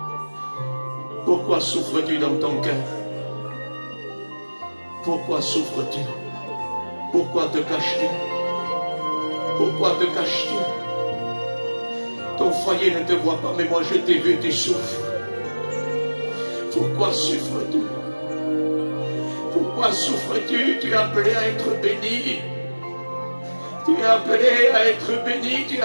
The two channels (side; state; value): both; inverted; correlation -1.00